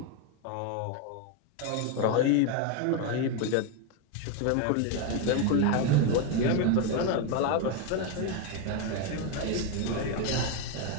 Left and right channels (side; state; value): both; different; correlation 0.01